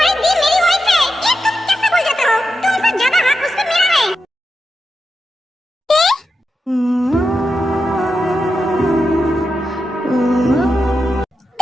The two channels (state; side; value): normal; both; correlation 0.88